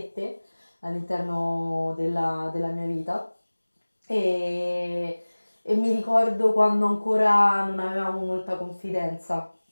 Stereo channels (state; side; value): inverted; both; correlation -1.00